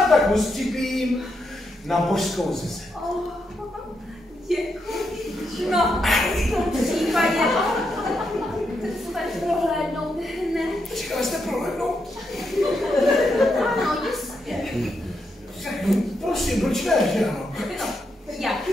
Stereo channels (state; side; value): normal; both; correlation 0.82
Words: připím na božskou zeze. Oh, děkuji. No, v tom případě chcete prohlédnout hned. Říkala jste prohlédnout? Ano, jistě. Prosím, proč ne, že ano? No, jak